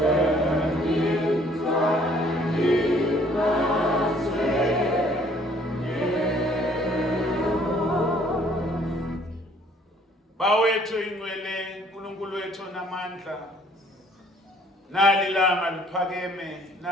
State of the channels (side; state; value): both; normal; correlation 0.60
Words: Bawethu ingcwele uNkulunkulu wethu namandla nalilanga liphakeme